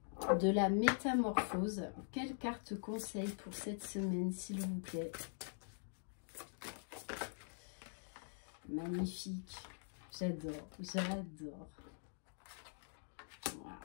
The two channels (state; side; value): silent; right; digital silence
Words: de la métamorphose. Quelle carte conseil pour cette semaine, s'il vous plaît? Magnifique. J'adore, j'adore. Wow,